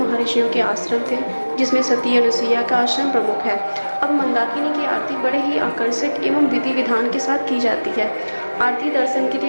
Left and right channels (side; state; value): both; inverted; correlation -1.00